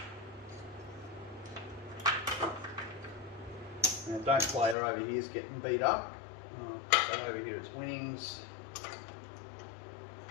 Now don't player over here is getting beat up. But over here it's winnings.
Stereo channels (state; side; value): drops out; right; at 4.8 s